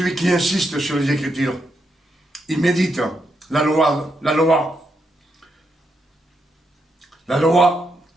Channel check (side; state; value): both; normal; correlation 0.81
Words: qui insiste sur les Écritures. Il médite la loi. La loi,